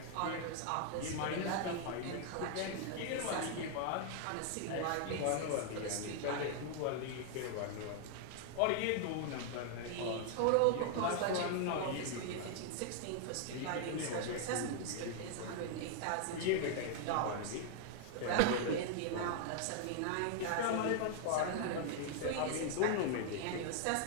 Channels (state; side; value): different; both; correlation 0.00